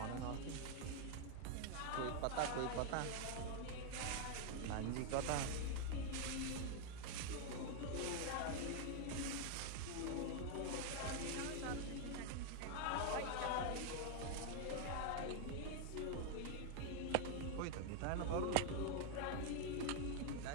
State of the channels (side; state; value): both; different; correlation 0.00